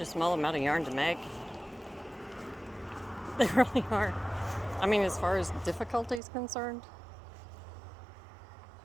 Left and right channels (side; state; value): left; drops out; at 6.2 s